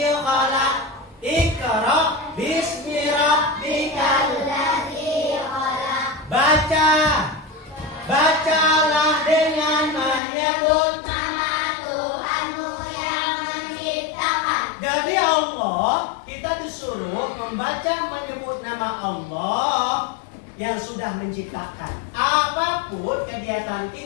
khalaq. Iqra bismi rabbikal ladzi khalaq. Bacalah dengan menyebut nama Tuhanmu yang menciptakan. Jadi Allah, kita disuruh membaca menyebut nama Allah yang sudah menciptakan. Apapun kegiatan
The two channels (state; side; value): drops out; right; at 10.2 s